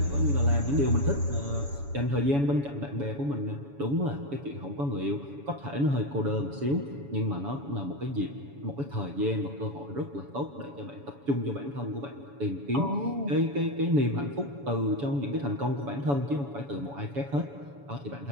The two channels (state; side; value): late; left; 7.1 ms